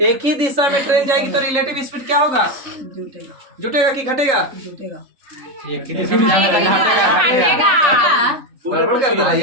एक ही दिशा में ट्रेन जाएगी तो रिलेटिव स्पीड क्या होगा? जुटेगा कि घटेगा? एक ही दिशा में गड़बड़ कर दिया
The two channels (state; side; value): late; left; 3.5 ms